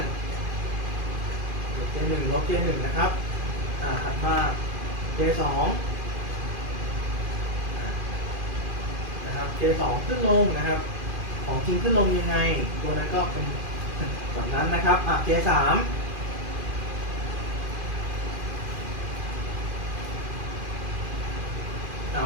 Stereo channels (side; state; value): left; late; 2.4 ms